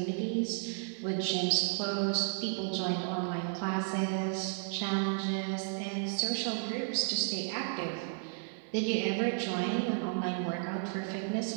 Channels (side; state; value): left; silent; 56 dB below the other